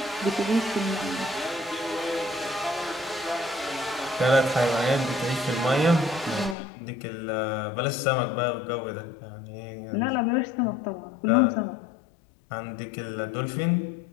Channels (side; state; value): right; drops out; at 6.6 s